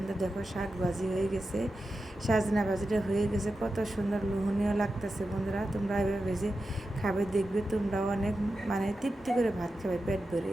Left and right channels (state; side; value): normal; both; correlation 0.91